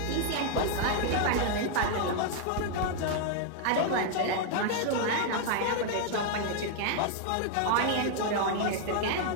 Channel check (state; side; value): different; both; correlation 0.00